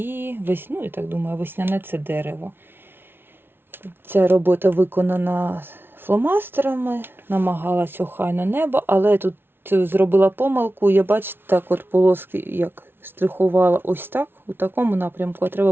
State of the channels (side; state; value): left; late; 0.11 ms